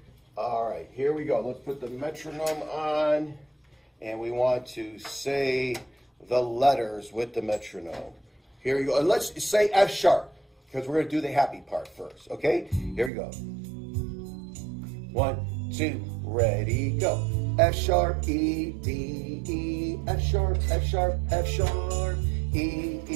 All right, here we go. Let's put the metronome on, and we want to say the letters with the metronome. Here we go. And let's say F sharp, because we're going to do the happy part first, okay? Here we go. 1, 2, ready, go. F sharp, E, D, E, F sharp, F sharp, F sharp, E,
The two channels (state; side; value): drops out; left; at 13.1 s